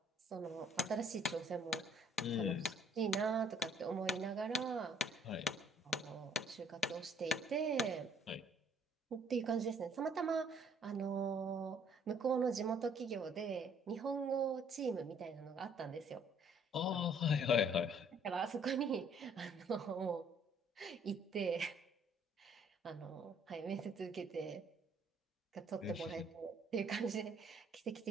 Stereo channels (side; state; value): both; normal; correlation 0.61